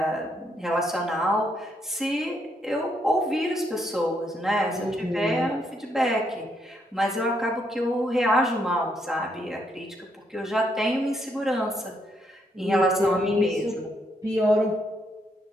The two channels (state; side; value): normal; both; correlation 0.75